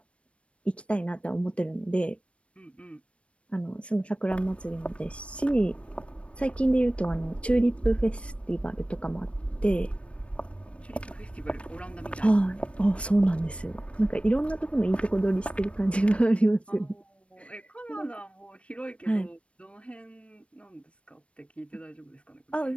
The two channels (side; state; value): right; late; 0.061 ms